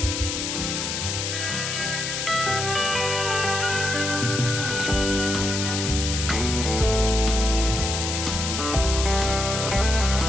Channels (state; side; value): noise; left; hiss, 3 dB below the sound